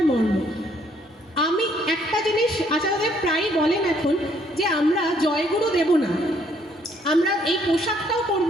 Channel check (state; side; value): normal; both; correlation 0.67